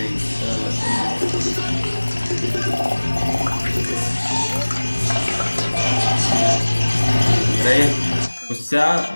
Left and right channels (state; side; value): inverted; both; correlation -1.00